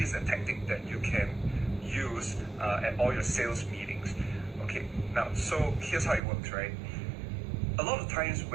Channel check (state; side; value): drops out; left; at 6.2 s